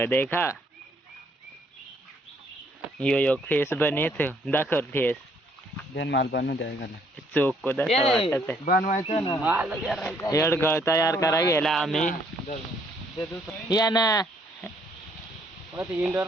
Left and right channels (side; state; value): both; normal; correlation 0.66